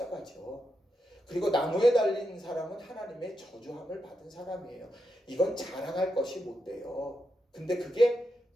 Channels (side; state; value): both; normal; correlation 0.85